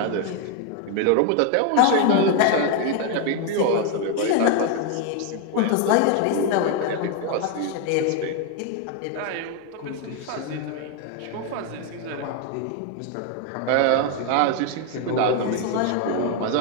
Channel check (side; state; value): both; different; correlation 0.01